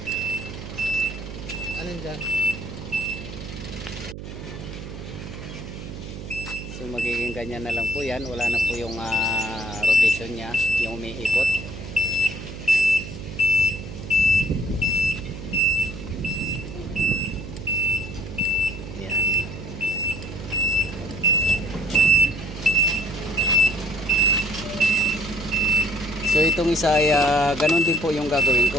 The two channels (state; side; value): noise; right; hum, 10 dB below the sound